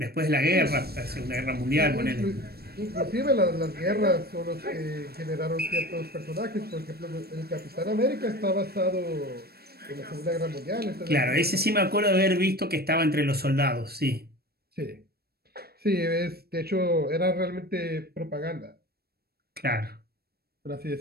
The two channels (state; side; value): late; left; 0.46 ms